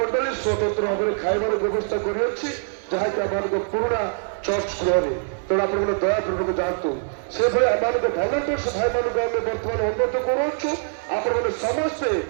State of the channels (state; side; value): silent; left; digital silence